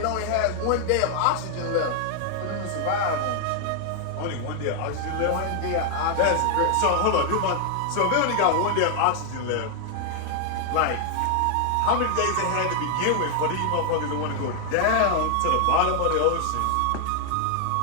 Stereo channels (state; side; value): different; both; correlation 0.00